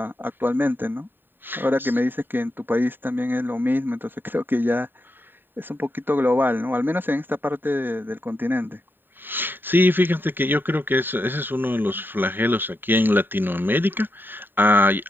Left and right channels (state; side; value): late; left; 0.094 ms